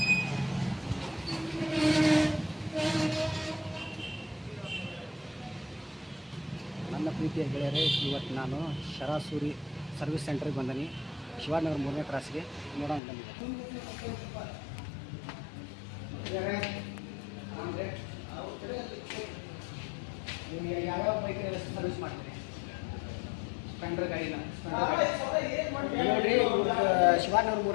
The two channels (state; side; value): drops out; right; at 13.0 s